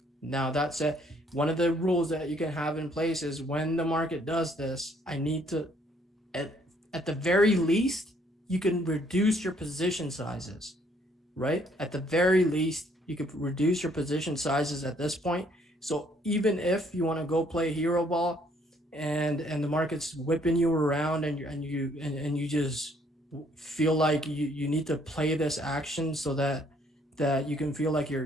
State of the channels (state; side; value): normal; both; correlation 0.65